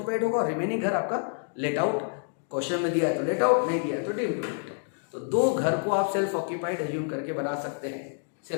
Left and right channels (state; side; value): silent; right; 59 dB below the other